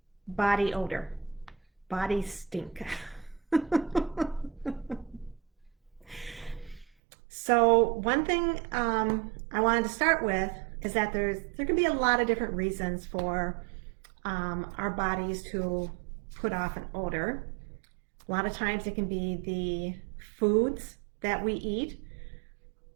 body odor, body stink. So one thing I wanted to start with is that there can be a lot of different reasons for our bodies to put off an odor. A lot of times it can be the foods that we eat.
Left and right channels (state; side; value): drops out; left; at 6.9 s